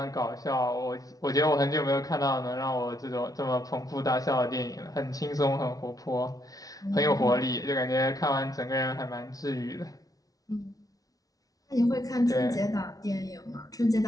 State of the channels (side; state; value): right; late; 0.18 ms